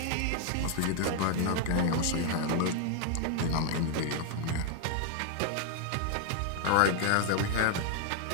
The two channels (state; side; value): different; both; correlation 0.00